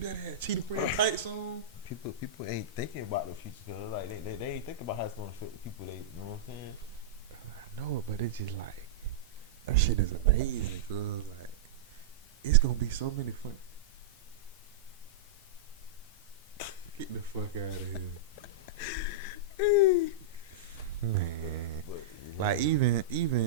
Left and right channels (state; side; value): quieter; left; 3.1 dB